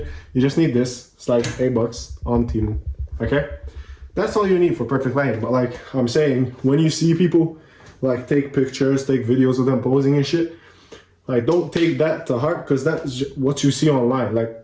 You just need this. It's like $8 on Temu. Okay? That's all you need for perfect lighting. But like I'm saying, when you see people like take pictures, take videos of them posing and shit, like don't take that to heart, because that's what you see online. Like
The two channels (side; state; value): both; identical; correlation 1.00